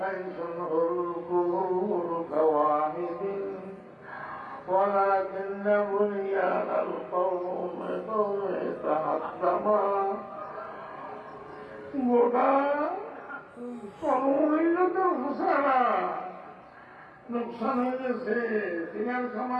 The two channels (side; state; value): both; identical; correlation 1.00